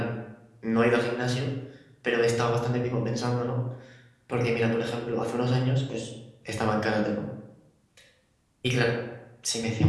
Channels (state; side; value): identical; both; correlation 1.00